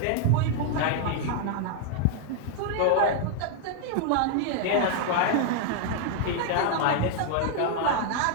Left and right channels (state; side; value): different; both; correlation 0.00